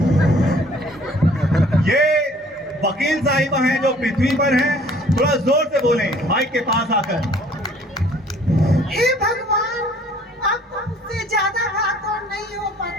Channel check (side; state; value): both; normal; correlation 0.56